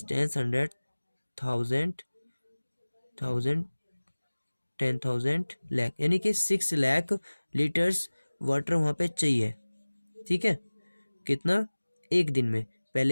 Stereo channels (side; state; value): both; inverted; correlation -1.00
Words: 1000 10,000 लाख, यानी कि 6 लाख लीटर्स वाटर वहाँ पे चाहिए, ठीक है। कितना, एक दिन में।